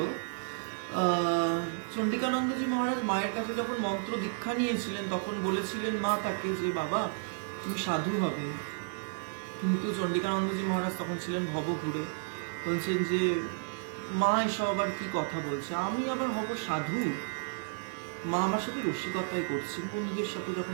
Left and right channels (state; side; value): silent; left; 56 dB below the other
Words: চন্ডিকানন্দজি মহারাজ মায়ের কাছে যখন মন্ত্র দীক্ষা নিয়েছিলেন তখন বলেছিলেন মা তাকে যে বাবা তুমি সাধু হবে, কিন্তু চন্ডিকানন্দজি মহারাজ তখন ছিলেন ভবঘুরে, বলছেন যে মা এসব আবার কি কথা বলছে, আমি আবার হব সাধু? মা আমার সাথে রসিকতাই করছে, বন্ধুদের সাথে